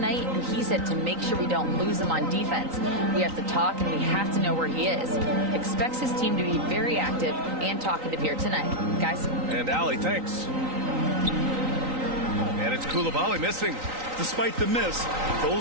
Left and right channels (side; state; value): left; late; 3.9 ms